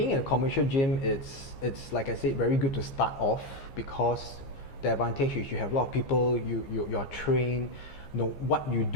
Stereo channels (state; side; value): late; right; 15 ms